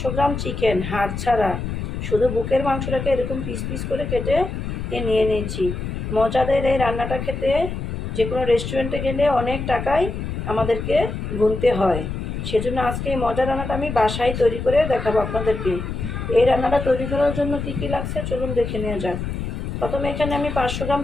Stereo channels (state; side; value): noise; left; rumble, 5 dB below the sound